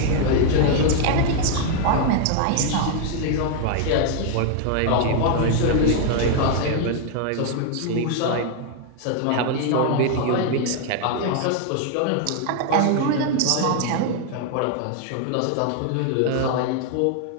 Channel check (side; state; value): both; different; correlation 0.00